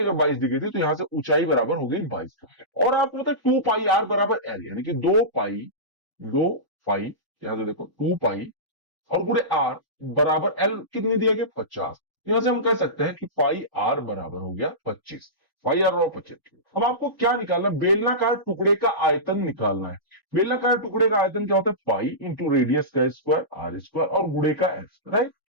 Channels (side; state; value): both; normal; correlation -0.19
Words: 22 दिखी थी तो यहां से ऊंचाई बराबर हो गई 22। और आपको पता है 2 पाई आर बराबर एल, यानी कि 2 पाई यहां से देखो 2 पाई और गुणे आर बराबर एल कितनी दिया गया 50। यहां से हम कह सकते हैं कि पाई आर बराबर हो गया 25, पाई आर और 25। अब आपको क्या निकालना है, बेलनाकार टुकड़े का आयतन निकालना है। बेलनाकार टुकड़े का आयतन क्या होता है, पाई इंटू रेडियस का स्क्वायर आर स्क्वायर और गुणे का एस, राइट।